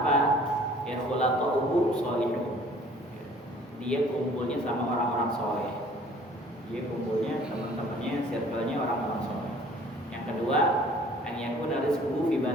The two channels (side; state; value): both; normal; correlation 0.53